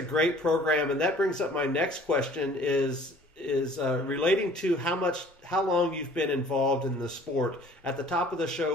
great program, and that brings up my next question is relating to how long you've been involved in the sport. At the top of the show,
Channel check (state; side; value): normal; both; correlation 0.52